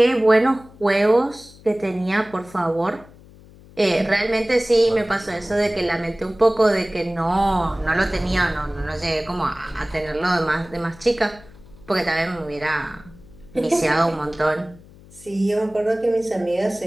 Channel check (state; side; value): noise; left; hum, 23 dB below the sound